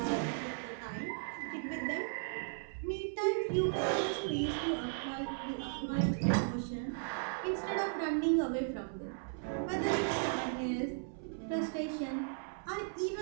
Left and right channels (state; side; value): silent; left; 54 dB below the other